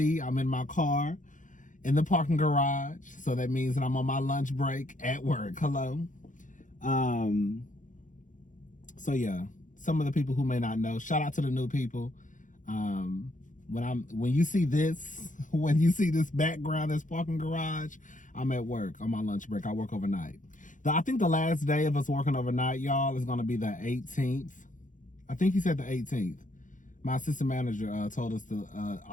I'm in my car in the parking garage. So that means that I'm on my lunch break at work. Hello. So yeah, some of the people who may not know, shout out to the new people. When you see this background, this parking garage, I'm at work on my lunch break. I work overnight. I think the last day of us working overnight, y'all, is gonna be the 18th. I think he said the 18th. My assistant manager told us the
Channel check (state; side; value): late; right; 0.37 ms